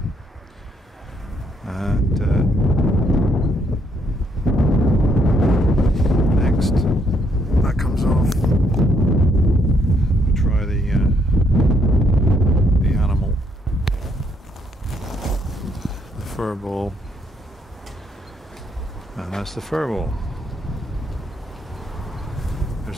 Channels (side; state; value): both; normal; correlation 0.72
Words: and next that comes off. We'll try the animal, the furball, and that's the furball.